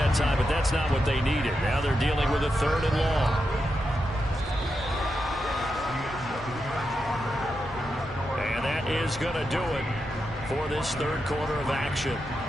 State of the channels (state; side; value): normal; both; correlation 0.86